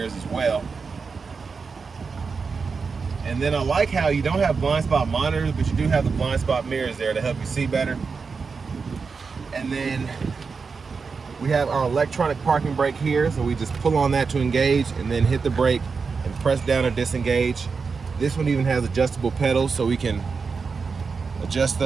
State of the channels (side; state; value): left; quieter; 5.0 dB